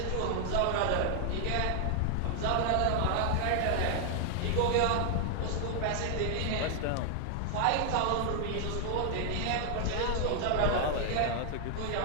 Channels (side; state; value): both; different; correlation 0.00